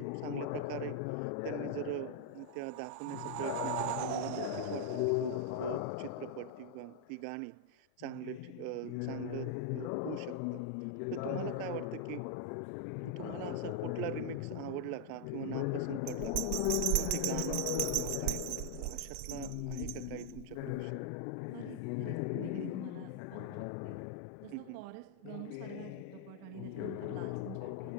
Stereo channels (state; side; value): different; both; correlation -0.01